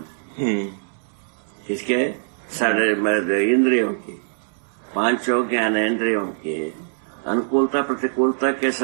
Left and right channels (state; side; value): silent; left; 64 dB below the other